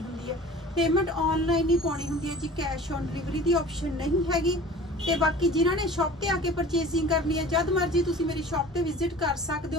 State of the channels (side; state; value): both; normal; correlation 0.42